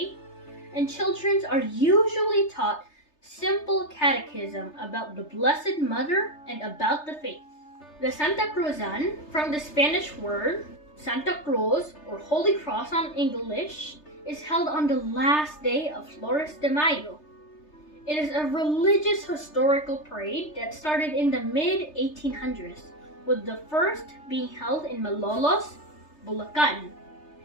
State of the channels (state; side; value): late; right; 3.3 ms